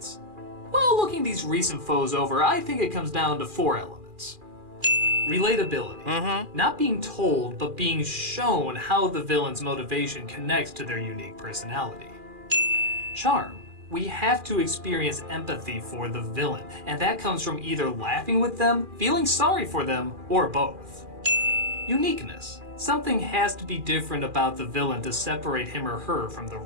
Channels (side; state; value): left; late; 2.4 ms